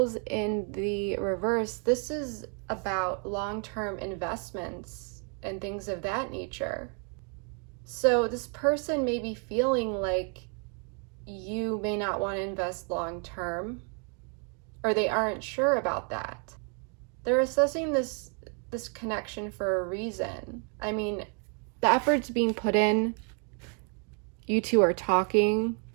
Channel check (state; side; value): quieter; left; 39.7 dB